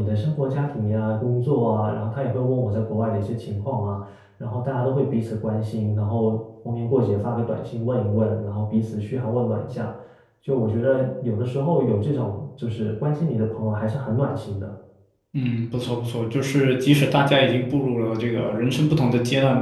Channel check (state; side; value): identical; both; correlation 1.00